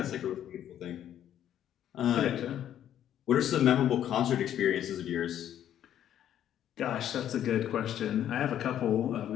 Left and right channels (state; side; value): quieter; right; 10.7 dB